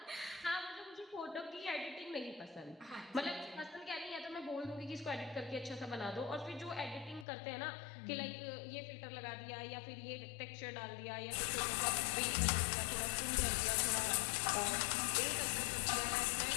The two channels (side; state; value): right; drops out; at 7.2 s